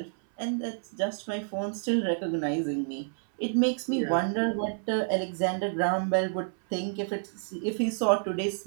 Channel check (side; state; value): left; silent; 58 dB below the other